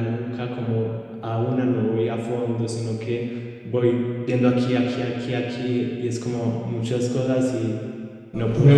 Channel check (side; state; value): both; identical; correlation 1.00